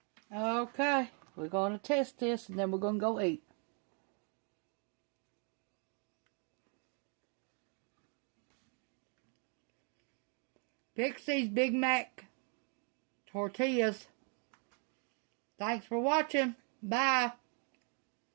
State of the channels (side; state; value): left; quieter; 39.5 dB